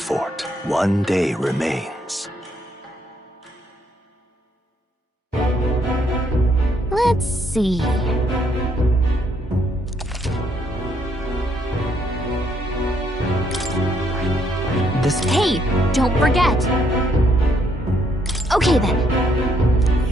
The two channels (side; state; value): both; normal; correlation 0.71